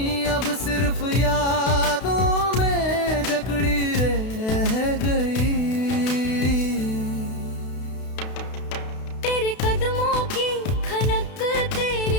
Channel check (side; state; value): right; late; 32 ms